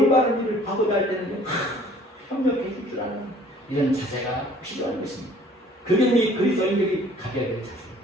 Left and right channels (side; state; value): both; normal; correlation 0.54